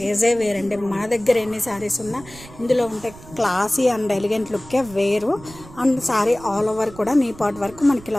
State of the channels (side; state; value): right; noise; rumble, 19 dB below the sound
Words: వేరండి. మన దగ్గర ఎన్ని శారీస్ ఉన్నా ఇందులో ఉంటే క్లాసీ అండ్ ఎలిగెంట్ లుక్కే వేరు. అండ్ శారీ ఆల్ ఓవర్ కూడా నీ పార్ట్ వరకు మనకి